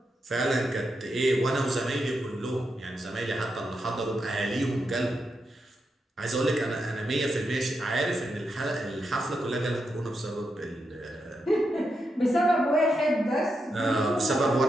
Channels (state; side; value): normal; both; correlation 0.84